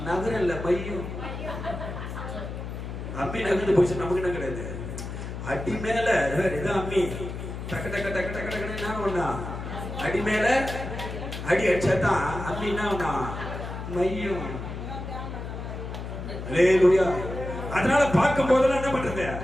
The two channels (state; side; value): noise; left; hum, 7 dB below the sound